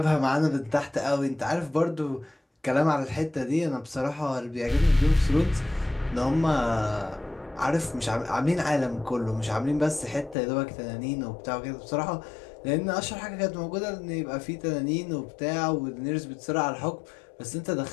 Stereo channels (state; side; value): drops out; right; at 10.4 s